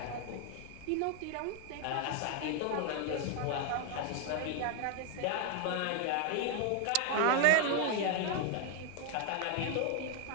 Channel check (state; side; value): different; both; correlation 0.00